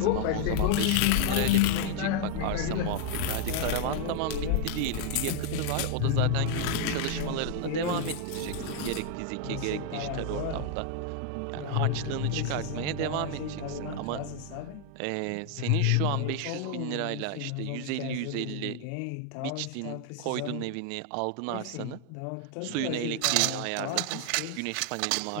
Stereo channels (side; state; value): both; different; correlation 0.00